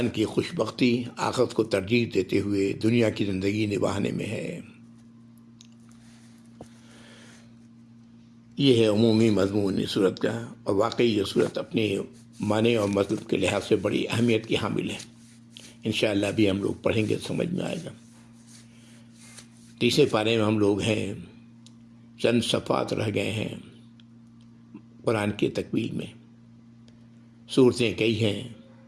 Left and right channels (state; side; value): identical; both; correlation 1.00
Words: کی خوش بختی آخرت کو ترجیح دیتے ہوئے دنیا کی زندگی نبھانے میں ہے. یہ ہے عمومی مضمون اس صورت کا، اور واقعی یہ صورت اپنے معنی اور مطلب کے لحاظ سے بڑی اہمیت کی حامل ہے. انشاءاللہ بھی ہم لوگ پڑھیں گے، سمجھ میں آئے گا۔ تیسرے پارے میں ہم لوگ ہیں، چند صفحات رہ گئے ہیں قرآن کی تکمیل میں، صورتیں کئی ہیں۔